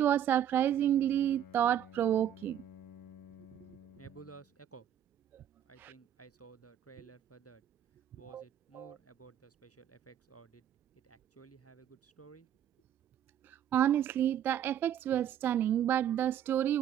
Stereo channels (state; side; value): quieter; left; 10.3 dB